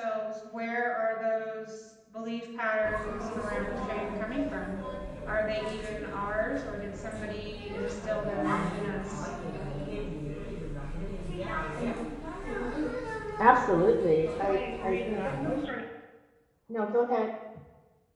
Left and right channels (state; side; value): identical; both; correlation 1.00